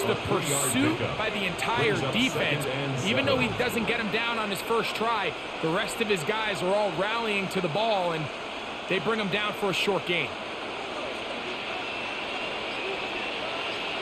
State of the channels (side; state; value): both; identical; correlation 1.00